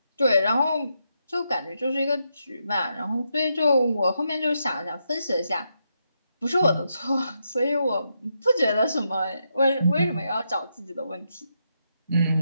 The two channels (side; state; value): both; inverted; correlation -0.82